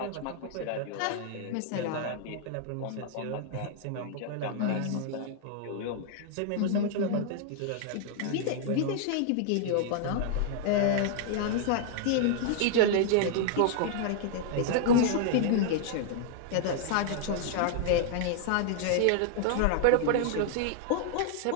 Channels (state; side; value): different; both; correlation -0.01